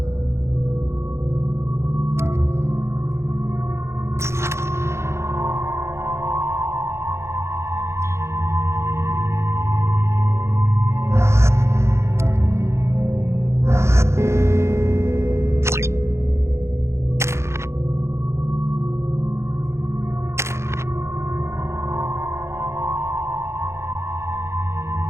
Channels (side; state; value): left; late; 0.13 ms